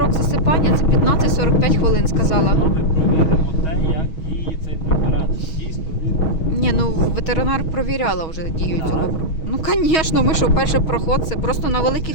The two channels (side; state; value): right; late; 6.3 ms